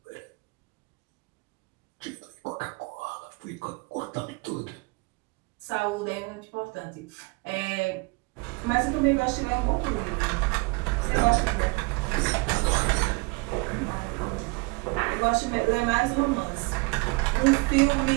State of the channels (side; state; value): left; quieter; 28.1 dB